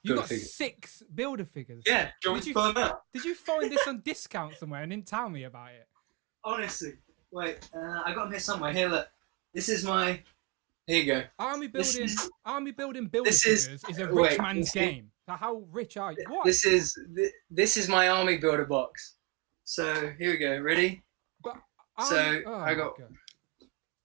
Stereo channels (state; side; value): quieter; left; 26.2 dB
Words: You got 6 builder figures. Yeah. Did you find this on discount somewhere and didn't tell me about it? Honestly, wait. I got them here somewhere. Here, look. This is my. Here you go. Army building builder figures is a rich man's game. So how rich are you? What? This is my Army Builder box. So here we go. Ready? I got. God.